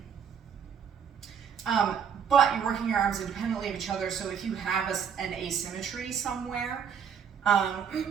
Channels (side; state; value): left; quieter; 7.4 dB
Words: But you're working your arms independently of each other, so if you have an asymmetry somewhere,